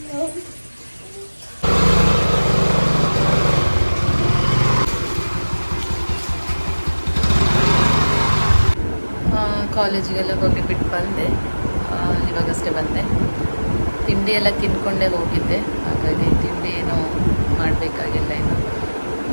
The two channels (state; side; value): inverted; both; correlation -1.00